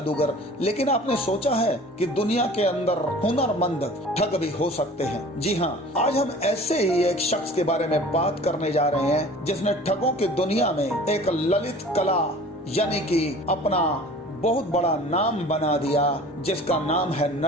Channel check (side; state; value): both; normal; correlation 0.45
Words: लेकिन आपने सोचा है कि दुनिया के अंदर हुनरमंद ठग भी हो सकते हैं? जी हाँ, आज हम ऐसे ही एक शख्स के बारे में बात करने जा रहे हैं जिसने ठगों की दुनिया में एक ललित कला यानी कि अपना बहुत बड़ा नाम बना दिया, जिसका नाम है